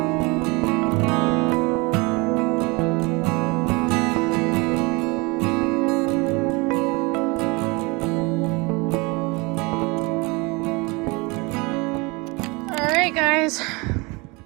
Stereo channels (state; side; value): quieter; left; 26.6 dB